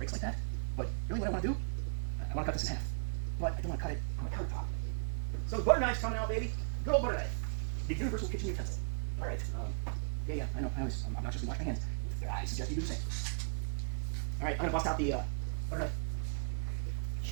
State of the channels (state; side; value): silent; left; 54 dB below the other